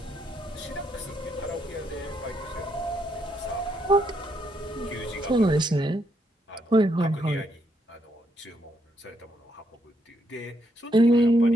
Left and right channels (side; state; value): both; normal; correlation 0.76